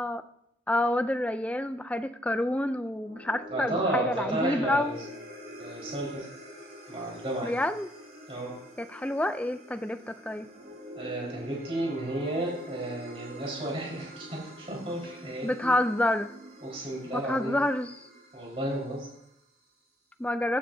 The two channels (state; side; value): normal; both; correlation 0.71